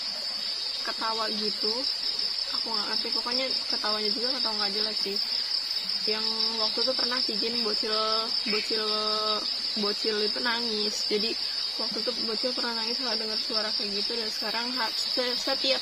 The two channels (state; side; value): identical; both; correlation 1.00